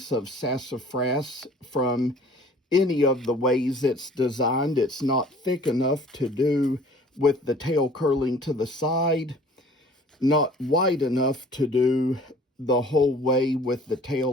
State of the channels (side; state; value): both; normal; correlation 0.50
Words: of sassafras from any of the ways it's designed. It's not thick enough to do with the tail curling to the side, not wide enough to do the whole way with the